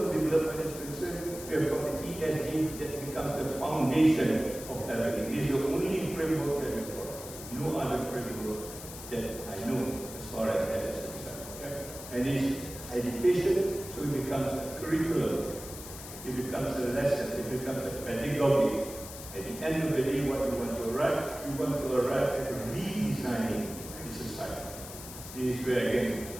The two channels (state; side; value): noise; left; hiss, 12 dB below the sound